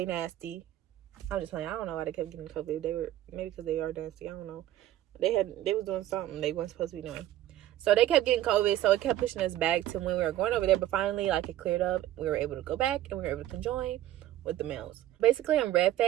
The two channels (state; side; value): quieter; left; 13.4 dB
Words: nasty. I'm just playing. I don't know why they kept getting COVID. They were, maybe because they are nasty. I don't know. They was doing something they weren't supposed to be doing. So they kept getting COVID, so it kept pushing us back to when we were going over there. But finally, like, it cleared up. We were able to go back, and we were able to conjoin with the males. Basically, in red